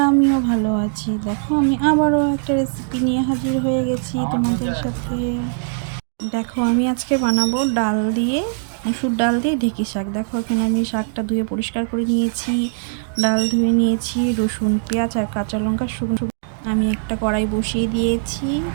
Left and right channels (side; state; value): left; silent; digital silence